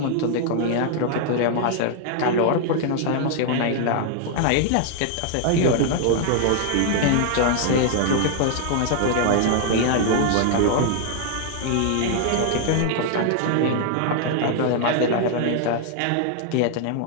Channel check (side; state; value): both; different; correlation 0.00